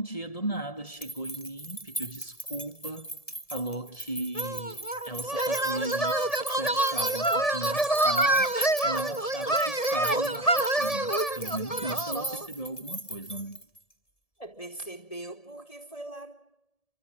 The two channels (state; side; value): late; right; 1.7 ms